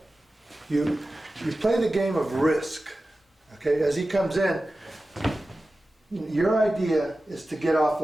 you play the game of risk. Okay, as he comes in, your idea is to get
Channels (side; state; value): both; normal; correlation 0.94